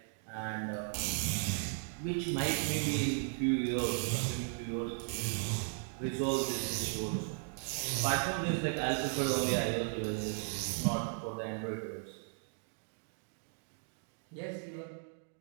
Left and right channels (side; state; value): left; silent; 54 dB below the other